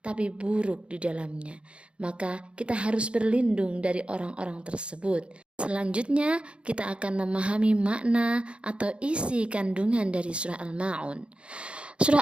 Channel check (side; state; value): left; late; 0.058 ms